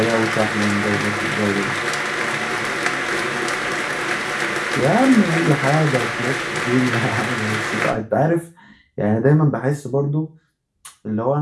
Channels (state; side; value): identical; both; correlation 1.00